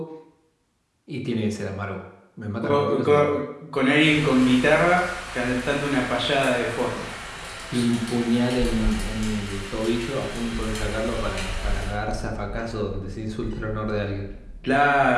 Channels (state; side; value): identical; both; correlation 1.00